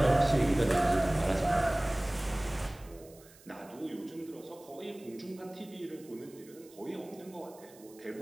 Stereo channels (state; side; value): noise; right; hiss, 24 dB below the sound